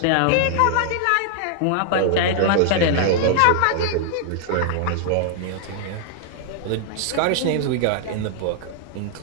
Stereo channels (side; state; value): both; different; correlation 0.00